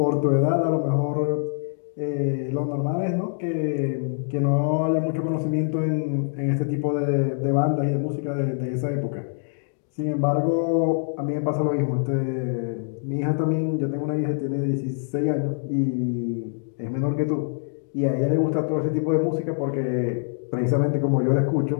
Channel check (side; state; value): right; silent; 62 dB below the other